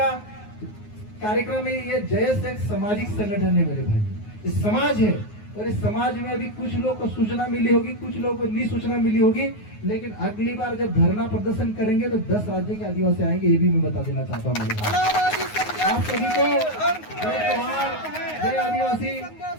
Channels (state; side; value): late; right; 9.5 ms